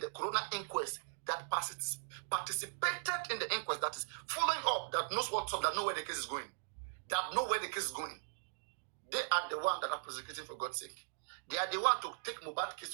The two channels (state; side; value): silent; left; digital silence